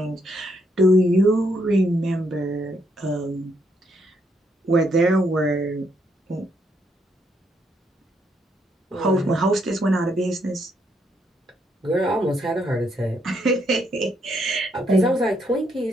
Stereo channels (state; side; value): normal; both; correlation 0.75